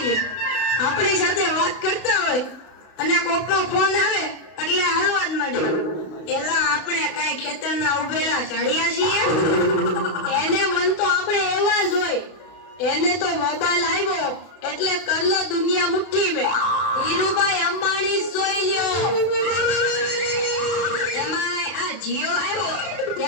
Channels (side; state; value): right; late; 32 ms